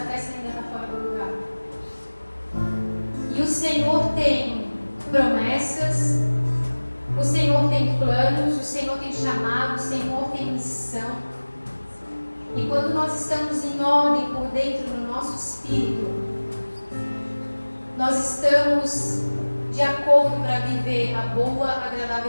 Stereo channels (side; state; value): both; inverted; correlation -1.00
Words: ainda está fora do lugar. E o Senhor tem promessas, o Senhor tem planos, o Senhor tem chamado, o Senhor tem missão. E quando nós estamos em ordem por dentro do nosso espírito, nós estamos de acordo para viver a boa,